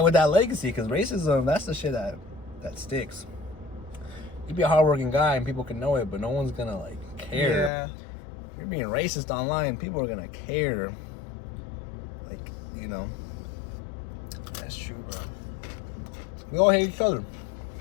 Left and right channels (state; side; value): drops out; right; at 7.7 s